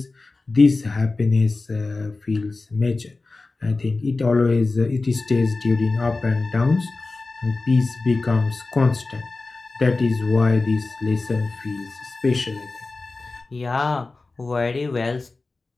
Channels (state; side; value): quieter; right; 3.5 dB